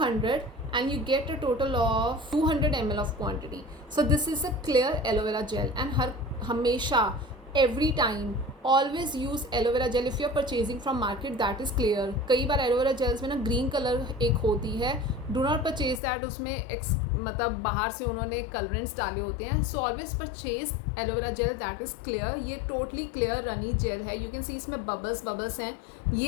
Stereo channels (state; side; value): drops out; right; at 16.0 s